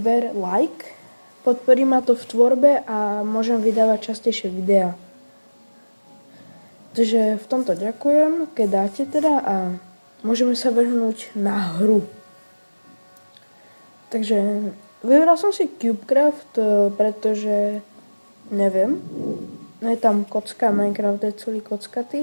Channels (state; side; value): inverted; both; correlation -1.00